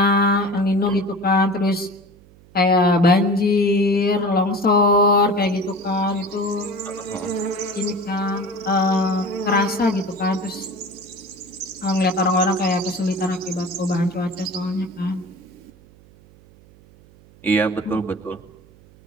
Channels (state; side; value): noise; right; hum, 26 dB below the sound